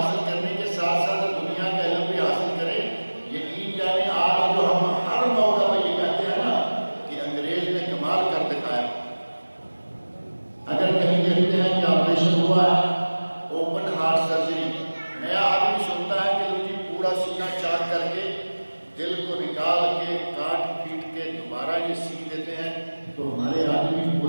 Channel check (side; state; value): both; inverted; correlation -1.00